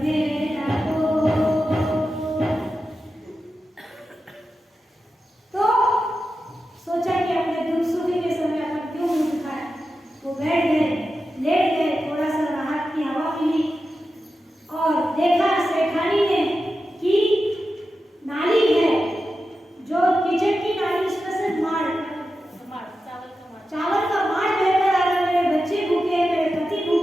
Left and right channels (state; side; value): normal; both; correlation 0.91